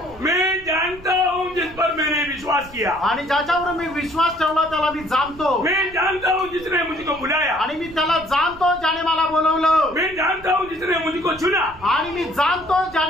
मैं जानता हूँ जिस पर मैंने विश्वास किया. आणि ज्याच्यावर मी विश्वास ठेवला त्याला मी जाणतो. मैं जानता हूँ जिसने मुझको बुलाया. आणि मी त्याला जाणतो ज्याने मला बोलवलं. मैं जानता हूँ जिसने मुझको चुना. आणि मी जाणतो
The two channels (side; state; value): right; noise; rumble, 20 dB below the sound